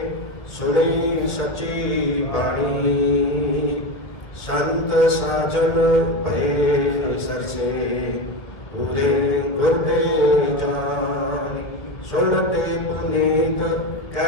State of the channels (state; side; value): late; right; 1.6 ms